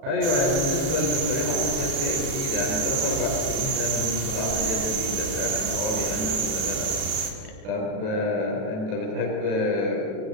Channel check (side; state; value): left; late; 37 ms